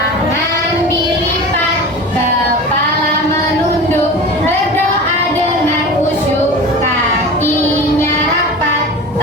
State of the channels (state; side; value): normal; both; correlation 0.33